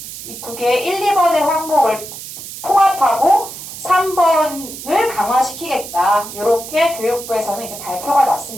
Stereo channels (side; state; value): right; noise; hiss, 11 dB below the sound